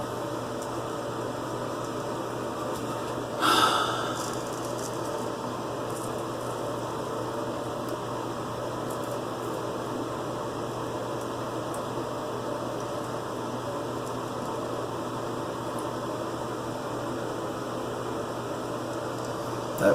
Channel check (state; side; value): identical; both; correlation 1.00